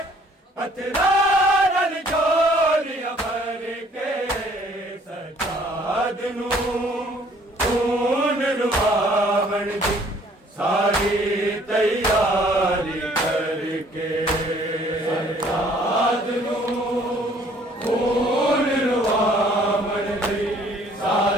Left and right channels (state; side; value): normal; both; correlation 0.59